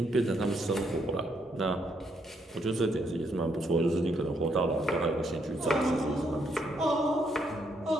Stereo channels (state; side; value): normal; both; correlation 0.74